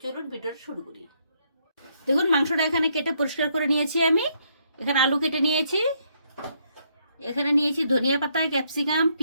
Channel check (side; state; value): both; inverted; correlation -0.72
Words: চলুন ভিডিওটা শুরু করি। দেখুন মাংসটা এখানে কেটে পরিষ্কার করে নিয়েছি আমি। এখানে আলু কেটে নিয়েছি, এখানে নিয়েছি ধনিয়া পাতা, ক্যাপসিকাম,